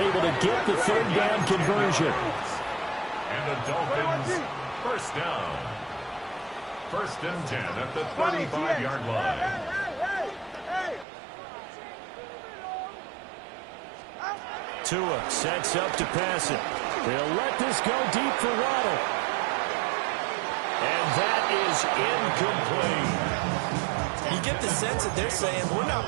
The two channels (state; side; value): drops out; left; at 11.1 s